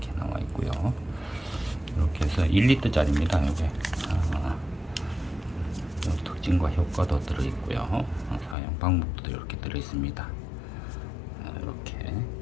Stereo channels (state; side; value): drops out; right; at 8.6 s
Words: 나와 있고요. 이렇게 해서 1리터짜리입니다. 이게 특징과 효과도 들어있고요. 사용 방법도 이렇게 들어있습니다. 이렇게